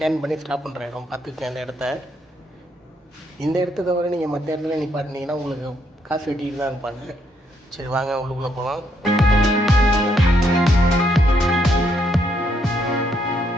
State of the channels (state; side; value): normal; both; correlation 0.74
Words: பண்ணி ஸ்டாப் பண்ணுற இடம், பார்த்துக்கங்க அந்த இடத்த. இந்த இடத்த தவிர நீங்கள் மற்ற இடத்துல நிப்பாட்டினீங்கன்னா உங்களுக்கு காசு வெட்டிட்டு தான் இருப்பாங்க. சரி வாங்க உள்ளுக்குள்ளே போகலாம்.